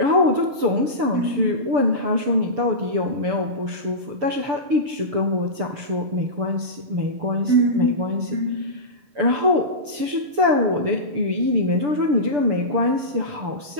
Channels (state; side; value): late; left; 6.9 ms